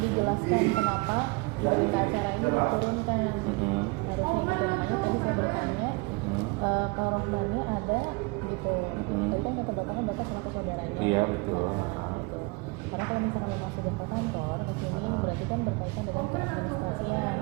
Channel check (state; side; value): quieter; left; 27.1 dB